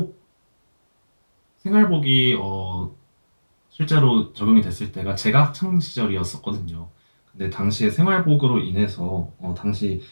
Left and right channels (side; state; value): both; inverted; correlation -1.00